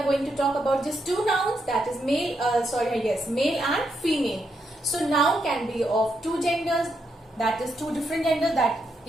going to talk about just two nouns, that is male and female. So noun can be of two genders, that is two different genders, that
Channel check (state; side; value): normal; both; correlation 0.80